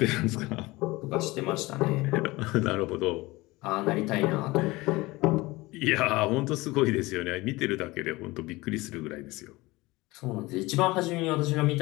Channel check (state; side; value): quieter; right; 21.2 dB